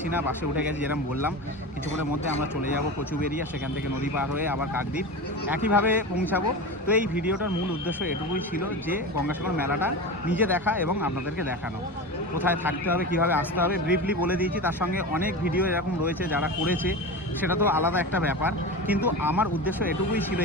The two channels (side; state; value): both; normal; correlation 0.26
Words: না, বাসে উঠে গেছি যেরকম বললাম। কিছুক্ষণের মধ্যে আমরা চলে যাব কচুবেড়িয়া, সেখান থেকে নদী পার হয়ে আবার কাকদ্বীপ একইভাবে পৌঁছাবো। তো এই ভিডিওটার মূল উদ্দেশ্য এটুকুই ছিল যে গঙ্গাসাগর মেলাটা নিজে দেখা এবং আপনাদেরকে দেখানো। কোথায় থাকতে হবে, কীভাবে আসতে হবে ব্রিফলি বলে দিয়েছি। তার সঙ্গে অনেক ভিডিও এরকম রয়েছে যারা করেছে, সেটা তো আলাদা একটা ব্যাপার। কিন্তু আমার উদ্দেশ্য এটুকুই ছিল